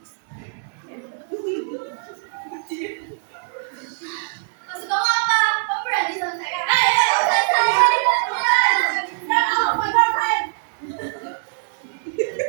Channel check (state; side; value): silent; left; digital silence